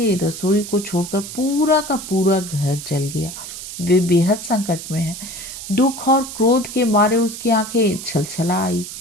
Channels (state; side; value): noise; right; hiss, 10 dB below the sound